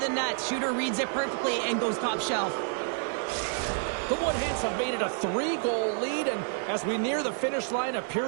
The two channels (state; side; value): silent; left; 59 dB below the other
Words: the net. Shooter reads it perfectly and goes top shelf. The Woodhens have made it a 3-goal lead, and as we near the finish line of